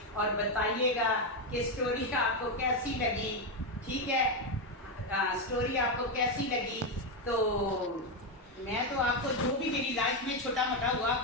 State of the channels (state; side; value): normal; both; correlation 0.07